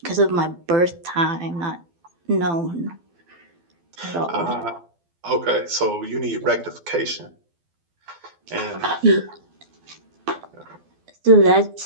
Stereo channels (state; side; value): late; left; 12 ms